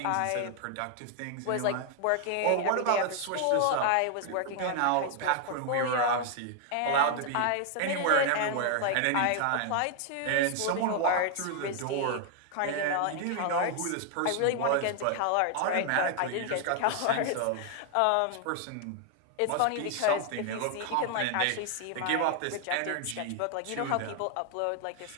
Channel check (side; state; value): both; different; correlation 0.00